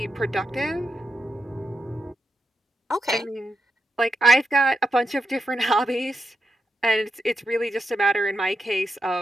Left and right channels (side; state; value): both; normal; correlation 0.85